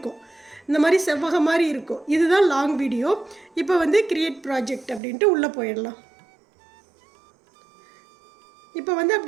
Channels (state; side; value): drops out; left; at 5.0 s